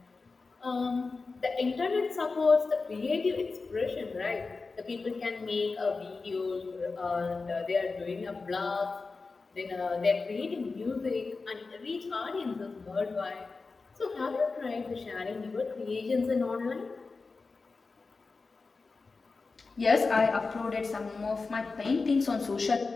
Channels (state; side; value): quieter; right; 4.1 dB